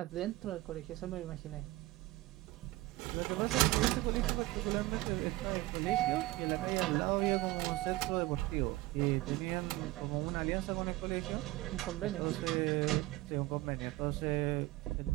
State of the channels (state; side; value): quieter; left; 18.9 dB